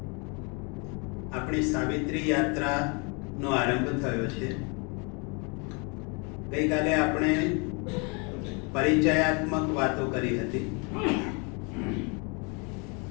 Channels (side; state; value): right; quieter; 32.8 dB